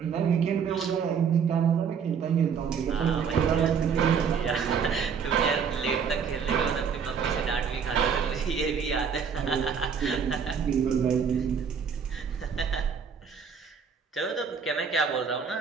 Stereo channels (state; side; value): quieter; left; 6.6 dB